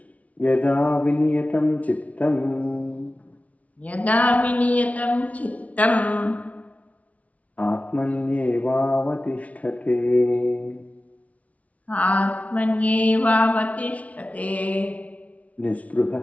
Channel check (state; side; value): late; right; 0.068 ms